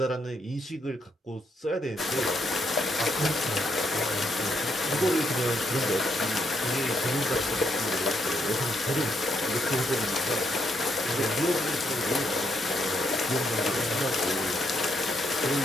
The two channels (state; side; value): normal; both; correlation 0.76